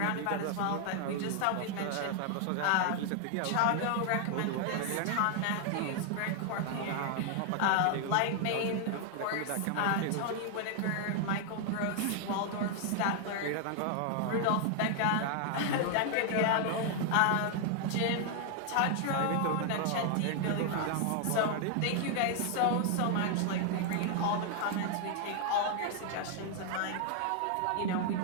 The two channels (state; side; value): different; both; correlation 0.00